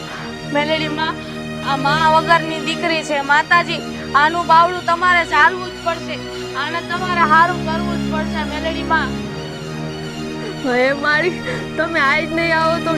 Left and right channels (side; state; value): both; identical; correlation 1.00